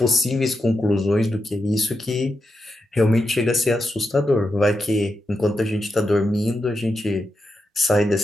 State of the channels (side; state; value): both; normal; correlation 0.87